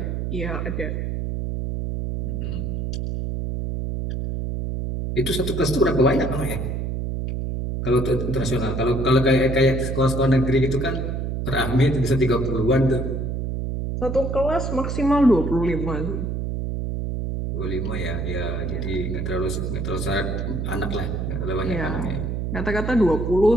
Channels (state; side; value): noise; right; hum, 2 dB below the sound